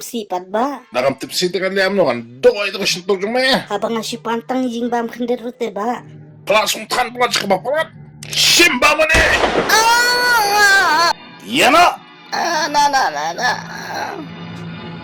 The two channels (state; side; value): identical; both; correlation 1.00